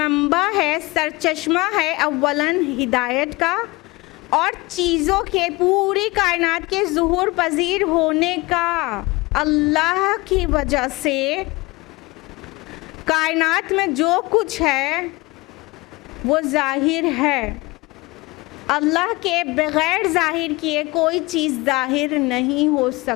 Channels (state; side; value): quieter; right; 23.4 dB